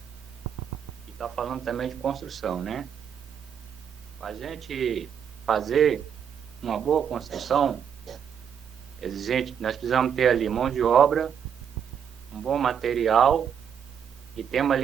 e está falando também de construção, né? Para a gente fazer uma boa construção, exigente, nós precisamos ter ali mão de obra, um bom material e temos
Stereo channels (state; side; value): quieter; left; 8.0 dB